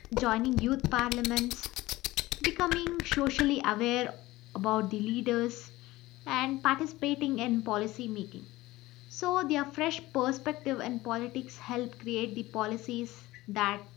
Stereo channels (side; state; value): right; quieter; 18.4 dB